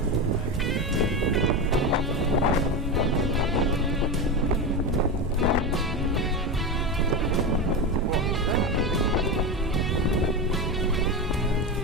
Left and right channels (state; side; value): normal; both; correlation 0.18